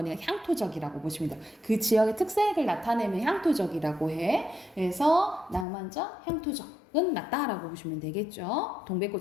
향토적이라고 보시면 돼요. 그 지역의 특색을 나타내면 향토적이라고 해. 그래서 낭만적, 향토적은 맞다라고 보시면 되겠죠.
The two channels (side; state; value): right; drops out; at 5.7 s